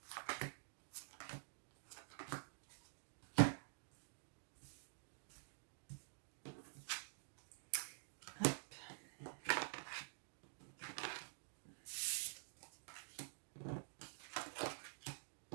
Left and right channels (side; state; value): left; silent; digital silence